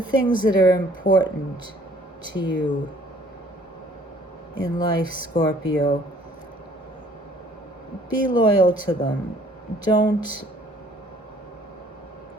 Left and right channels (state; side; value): normal; both; correlation 0.58